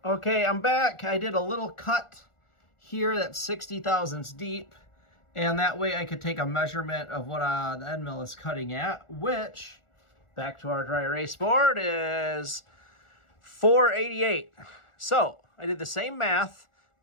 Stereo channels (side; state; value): right; late; 1.4 ms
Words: Okay, I'm back. I did a little cut here that's 60 thousandths deep. And that way I could take a measurement of what the end mill is cutting at, which, back to our dry erase board, is 488. So I did the same math,